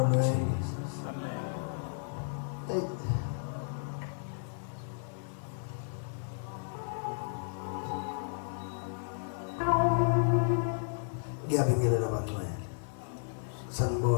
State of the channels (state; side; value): silent; right; 56 dB below the other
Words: Hey. Ngiyabingelela abantwana.